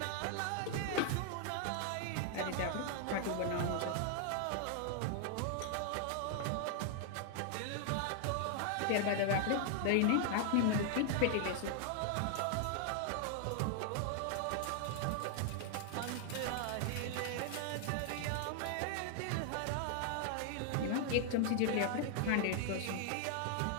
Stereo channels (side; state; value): both; different; correlation 0.00